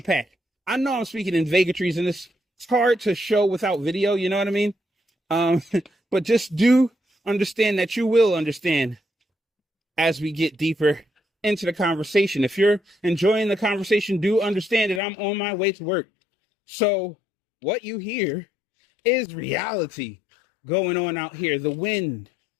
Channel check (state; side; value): drops out; right; at 15.0 s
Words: I know I'm speaking in vagaries, and it's hard to show without video, you know what I mean? But just do understand that you will understand as we get deeper into the conversation. If you're enjoying the conversation, do understand that I'm on my way to work. So what you hear is reality going on out here. The wind